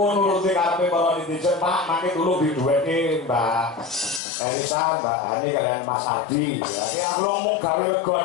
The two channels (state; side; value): drops out; right; at 4.2 s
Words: karepe para netizen, Pak, mangke dulu diduweke Mbak Elisa, Mbak Hani kalian Mas Adi. Ya, iki aku ngomong gawe lega